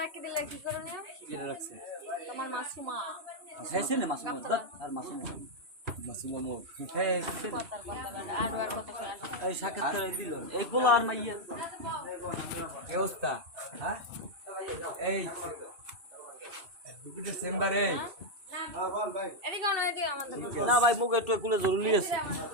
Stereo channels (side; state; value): left; late; 2.6 ms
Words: রাখি দিলা কি করে নিও কি রাখছি তোমার মাসুমা খাইছে না মাসুমা আর মাসুমা মো আর কথা এই সাক্ষাৎ করে দিল এই বলা আর মাইয়ে কি অবস্থা হ্যাঁ এই দুপুরে চেম্বারে এদিকে অন এদিকে আমাদের না ভাই মুখ একটু কুলে জরুরি আছে